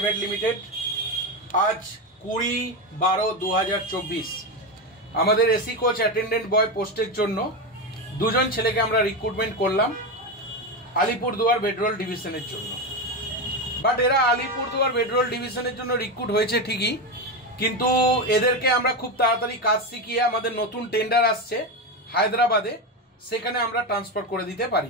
limited আজ 20/12/2024 আমাদের AC coach attendant বয় পোস্টের জন্য দুজন ছেলেকে আমরা রিক্রুটমেন্ট করলাম আলিপুরদুয়ার বেডরোল ডিভিশনের জন্য। বাট এরা আলিপুরদুয়ার বেডরোল ডিভিশনের জন্য রিক্রুট হয়েছে ঠিকই, কিন্তু এদেরকে আমরা খুব তাড়াতাড়ি কাজ শিখিয়ে আমাদের নতুন টেন্ডার আসছে হায়দ্রাবাদে, সেখানে আমরা ট্রান্সফার করে দিতে পারি,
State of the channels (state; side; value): normal; both; correlation 0.14